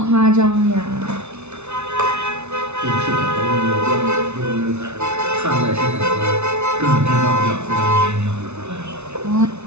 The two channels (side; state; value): left; late; 0.81 ms